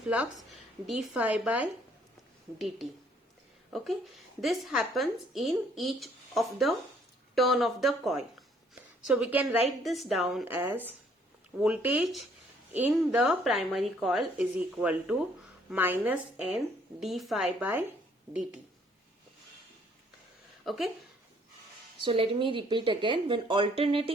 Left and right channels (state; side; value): normal; both; correlation 0.63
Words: flux? d phi by dt. Okay, this happens in each of the turn of the coil. So we can write this down as voltage in the primary coil is equal to minus n d phi by dt. Okay, so let me repeat again. When